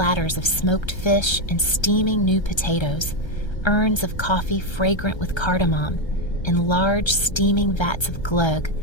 of smoked fish and steaming new potatoes, urns of coffee fragrant with cardamom, and large steaming vats of glögg,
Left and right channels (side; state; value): right; late; 1.3 ms